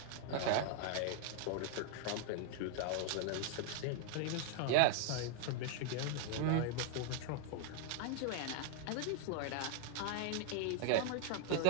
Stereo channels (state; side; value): different; both; correlation 0.00